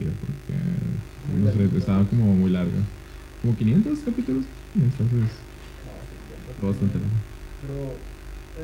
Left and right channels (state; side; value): identical; both; correlation 1.00